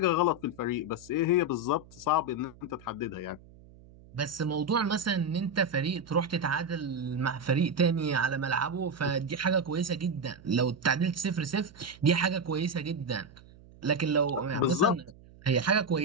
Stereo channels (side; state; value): right; noise; hum, 23 dB below the sound